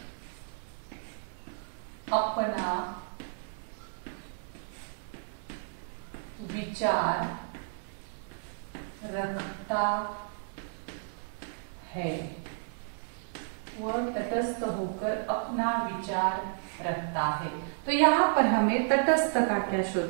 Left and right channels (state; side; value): silent; left; 56 dB below the other